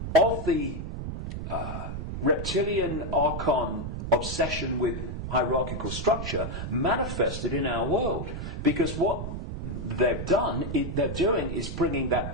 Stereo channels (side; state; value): right; noise; rumble, 5 dB below the sound